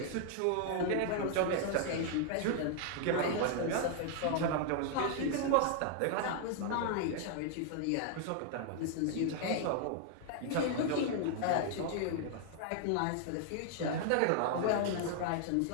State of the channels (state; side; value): different; both; correlation 0.00